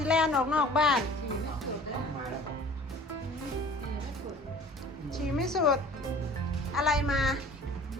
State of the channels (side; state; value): both; normal; correlation 0.46